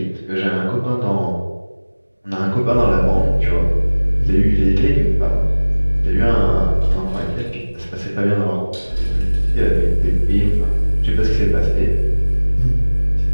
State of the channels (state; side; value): inverted; both; correlation -1.00